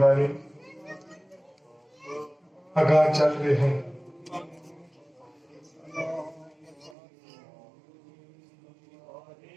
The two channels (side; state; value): left; drops out; at 7.0 s